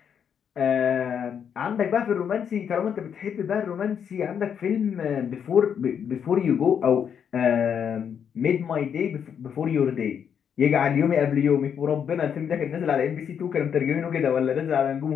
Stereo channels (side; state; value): right; quieter; 7.9 dB